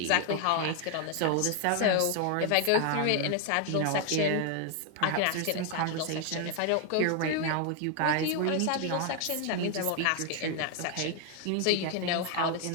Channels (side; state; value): both; different; correlation 0.01